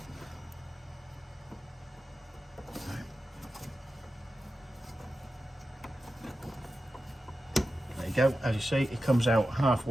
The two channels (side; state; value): both; normal; correlation 0.92